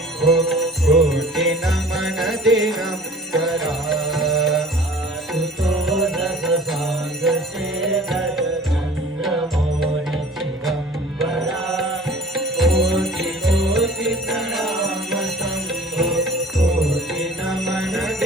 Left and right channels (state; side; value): normal; both; correlation 0.47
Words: कोटि नमन दिगंबरा सुतोषस सांग शेखर चंद्र मौनि चिदंबरा कोटि कोटि प्रणाम शंभो कोटि नमन